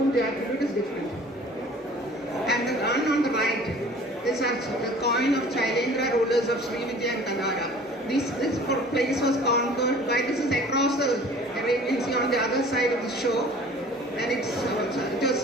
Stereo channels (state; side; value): normal; both; correlation 0.48